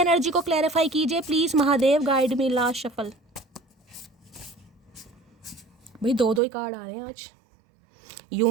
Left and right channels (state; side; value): drops out; left; at 6.4 s